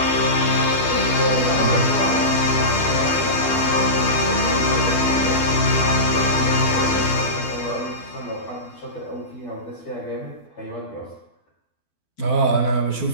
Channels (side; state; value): right; late; 12 ms